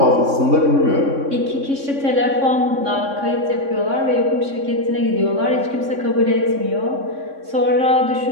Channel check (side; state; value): left; late; 3.6 ms